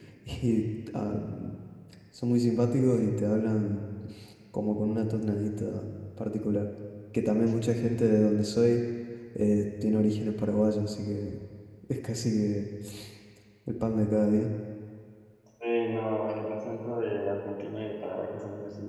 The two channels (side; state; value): both; identical; correlation 1.00